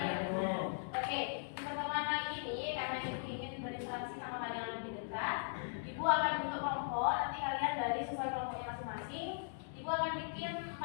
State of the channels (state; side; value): silent; right; digital silence